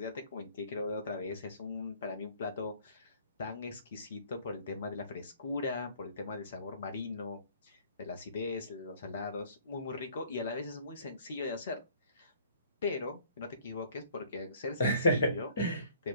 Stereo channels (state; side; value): inverted; both; correlation -0.56